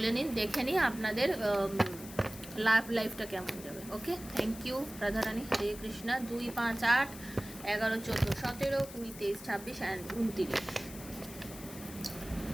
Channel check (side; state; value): left; noise; hiss, 15 dB below the sound